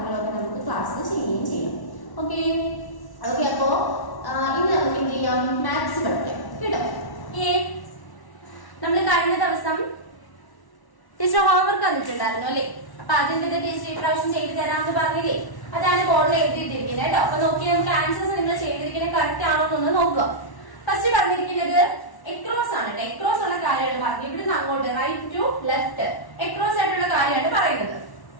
നമുക്ക് ക്ലാസ്സിൽ ചെയ്യുകയും ചെയ്യാം. ഓക്കെ ഓക്കെ അപ്പോൾ ഇനി നമുക്ക് എന്ത് ചെയ്യാം, മാത്സ് പഠിക്കാം കേട്ടോ. നമ്മൾ കഴിഞ്ഞ ദിവസം ടീച്ചർ ഹോംവർക്ക് തന്നിട്ടുണ്ടായിരുന്നു അല്ലേ. അപ്പൊ അതിന്റെ ടീച്ചർ ഇപ്രാവശ്യം ചെയ്തു തരാമെന്ന് പറഞ്ഞില്ലേ, അതാണ് ബോർഡിൽ എഴുതിയിട്ടിരിക്കുന്നത് കേട്ടോ. അപ്പൊ നോക്കി നമുക്ക് ആൻസേഴ്സ് നിങ്ങൾ ചെയ്തിരിക്കുന്നത് കറക്റ്റ് ആണോ എന്നൊന്ന് നോക്കുക. ഫസ്റ്റ് പറഞ്ഞിരിക്കുന്നത് എക്രോസ് ആണ്. എക്രോസ് ഉള്ള കാര്യമാണ് പറഞ്ഞത്. ഇവിടുന്ന് അങ്ങോട്ട് റൈറ്റ് ടു ലെഫ്റ്റ് എക്രോസ് ആയിട്ടുള്ള കാര്യമാണ് പറയുന്നത്.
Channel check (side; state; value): right; late; 1.1 ms